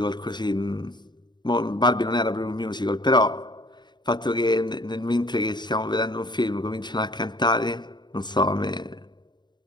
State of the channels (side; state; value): right; late; 0.21 ms